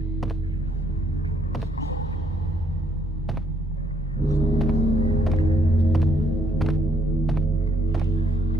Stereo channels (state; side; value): normal; both; correlation 0.69